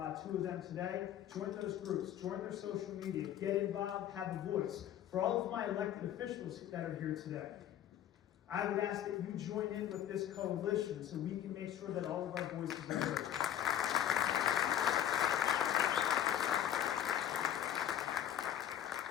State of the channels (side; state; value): right; quieter; 10.8 dB